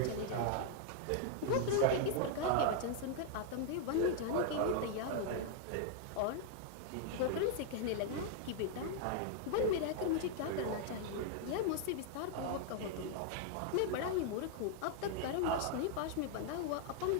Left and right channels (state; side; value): different; both; correlation 0.00